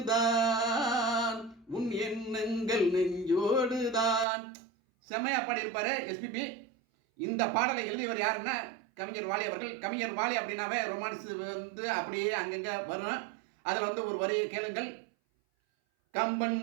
உன் எண்ணங்கள் நெஞ்சோடுதான். செம்மையா பாடியிருப்பாரு எஸ்பிபி. இந்த பாடலை எழுதியவர் யாருன்னா கவிஞர் வாலி அவர்கள். கவிஞர் வாலி அப்படின்னாவே ரொமான்ஸ் வந்து அப்படியே அங்கங்கே வரும். அதில் வந்து ஒரு வரியை கேளுங்கள். கம்பன்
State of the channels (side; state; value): left; drops out; at 4.2 s